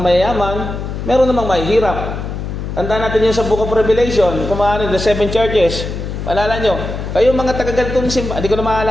meron namang mahihirap. Tandaan natin yung sa Book of Revelation, kumahanin, the 7 churches. Maalala nyo, kayo mga taga-ganitong simbahan, hindi ko na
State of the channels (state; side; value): noise; left; hum, 6 dB below the sound